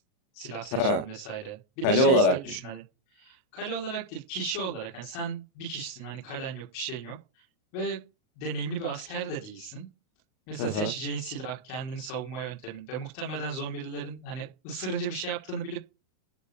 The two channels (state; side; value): late; right; 38 ms